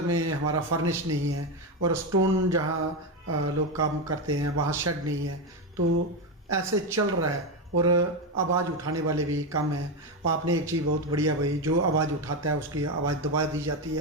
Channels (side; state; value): both; normal; correlation 0.11